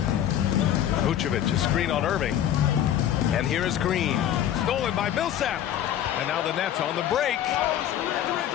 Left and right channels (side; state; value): right; quieter; 10.9 dB